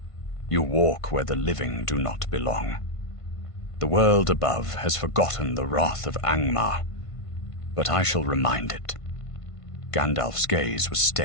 "You walk where the living do not belong. The world above has forgotten the wrath of Angmar, but I shall remind it." Gandalf's gaze was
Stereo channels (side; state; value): right; late; 1.5 ms